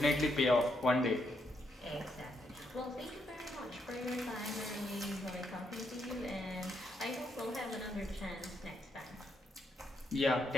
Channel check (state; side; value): normal; both; correlation 0.78